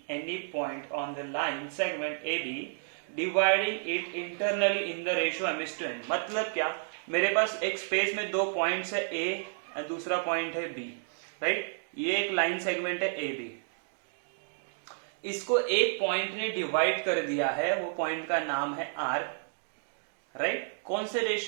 any point on the line segment A B dividing it internally in the ratio M is to N. मतलब क्या, मेरे पास एक space में दो points है ए और दूसरा point है बी, राइट। ये एक लाइन सेगमेंट है ए बी, इसको एक पॉइंट ने डिवाइड कर दिया है, वो पॉइंट का नाम है आर, राइट। कौन से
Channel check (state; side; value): silent; left; digital silence